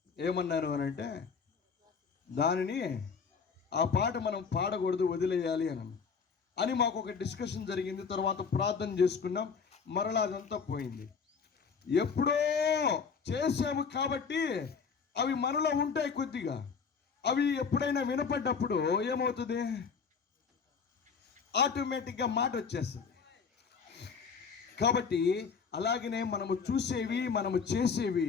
ఏమన్నాను అని అంటే, దానిని ఆ పాట మనం పాడకూడదు, వదిలేయాలి అని మాకు ఒక డిస్కషన్ జరిగింది. తర్వాత ప్రార్థన చేసుకున్నాం, మరలా అదంతా పోయింది. ఎప్పుడో చేసాము కాబట్టి అవి మనలో ఉంటాయి కొద్దిగా. అవి ఎప్పుడైనా వినపడ్డప్పుడు ఏమవుతుంది? ఆటోమేటిక్గా మాట వచ్చేస్తుంది. కాబట్టి అలాగనే మనము చూసేవి, మనము చేసేవి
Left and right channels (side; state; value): right; quieter; 5.8 dB